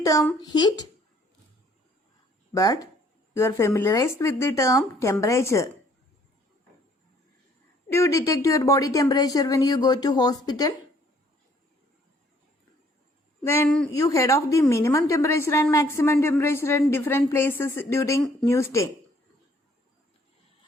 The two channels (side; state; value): both; normal; correlation 0.62